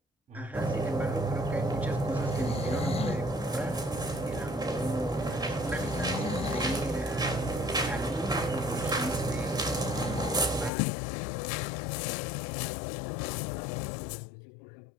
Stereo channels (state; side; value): drops out; right; at 10.7 s